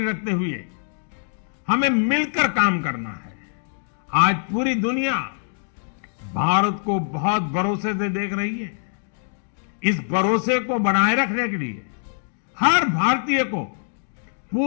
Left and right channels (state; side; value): silent; right; digital silence